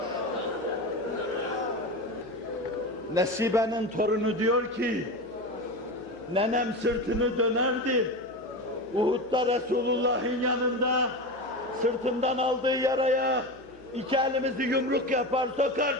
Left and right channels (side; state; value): right; noise; hum, 24 dB below the sound